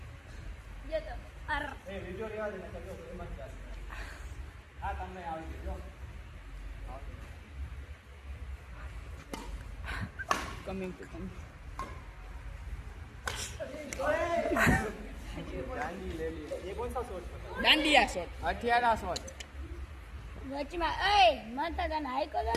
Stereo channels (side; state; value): both; identical; correlation 1.00